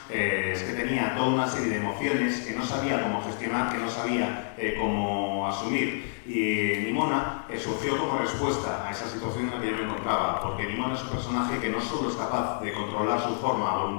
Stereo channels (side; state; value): right; silent; 59 dB below the other